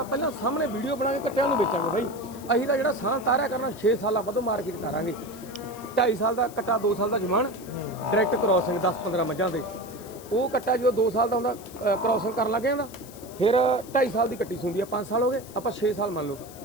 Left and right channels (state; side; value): noise; left; hiss, 19 dB below the sound